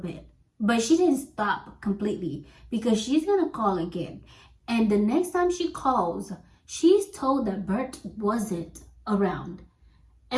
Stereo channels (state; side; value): identical; both; correlation 1.00